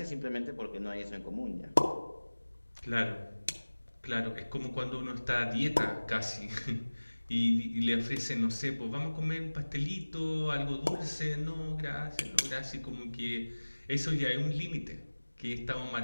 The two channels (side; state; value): both; inverted; correlation -1.00